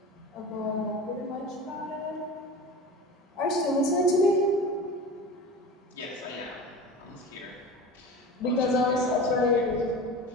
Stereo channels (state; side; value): normal; both; correlation 0.33